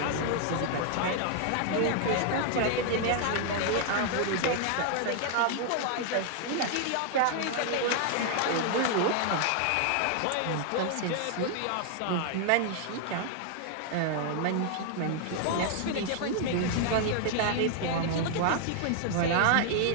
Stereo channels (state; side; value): different; both; correlation 0.00